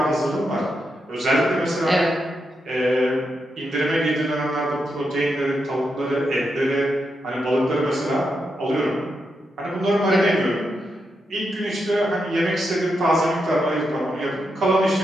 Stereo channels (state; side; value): normal; both; correlation 0.84